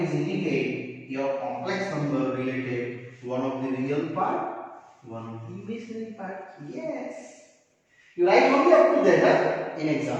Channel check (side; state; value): both; identical; correlation 1.00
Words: is indicate your complex number related one of the real part, one of the imaginary part. Yes. You write only up to that in